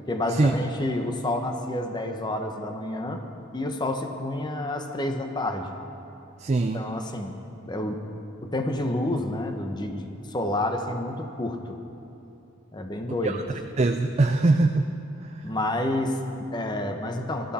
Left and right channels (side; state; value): both; normal; correlation 0.67